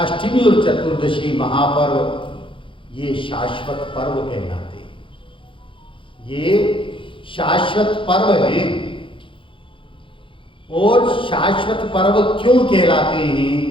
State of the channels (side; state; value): right; late; 0.25 ms